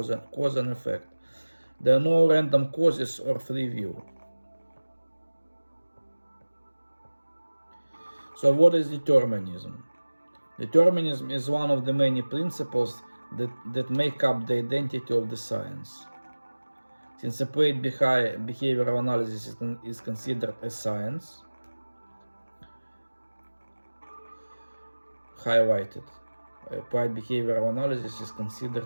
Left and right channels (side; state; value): both; inverted; correlation -1.00